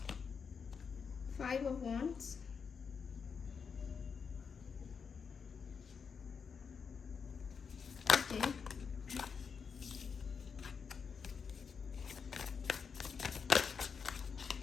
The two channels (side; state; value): right; quieter; 6.0 dB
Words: 5 of wands, okay,